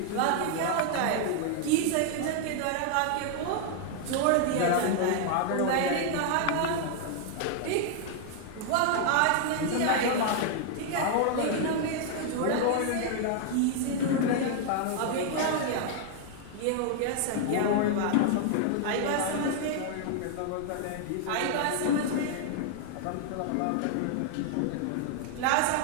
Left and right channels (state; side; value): different; both; correlation 0.00